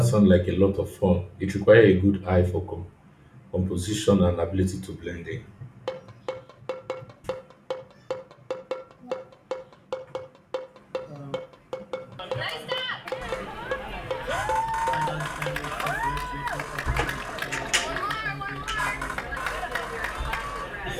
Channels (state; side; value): identical; both; correlation 1.00